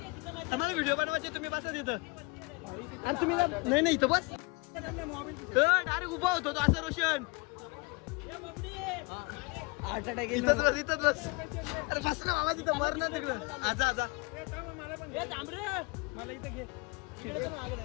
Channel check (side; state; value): right; quieter; 27.4 dB